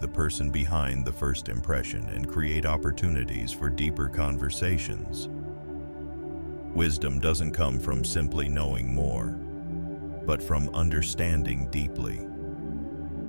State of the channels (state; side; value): inverted; both; correlation -1.00